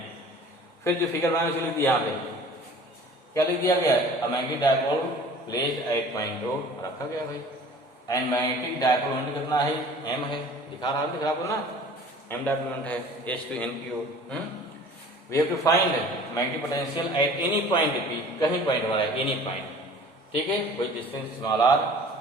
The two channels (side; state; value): both; normal; correlation 0.46